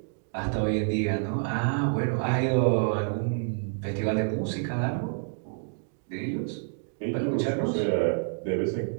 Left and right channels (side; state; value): left; silent; digital silence